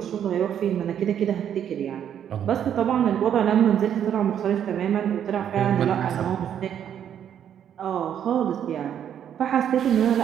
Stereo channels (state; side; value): quieter; left; 9.4 dB